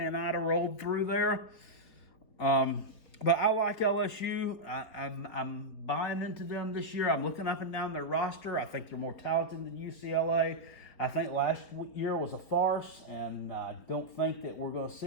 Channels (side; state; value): right; late; 4.2 ms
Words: Ida rolled through there. But I like LSU. I'm buying into them this year. I'm looking up and down their roster. I think they're more talented than UCLA. I think last year was a farce, and I don't think that we're going to see